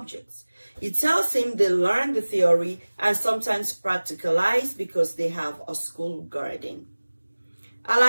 He tells him they learn the theory and sometimes practicalize because they have a school garden.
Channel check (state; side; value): inverted; both; correlation -1.00